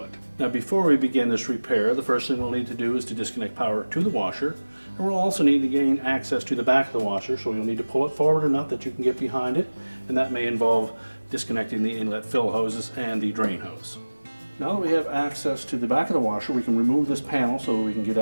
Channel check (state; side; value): inverted; both; correlation -1.00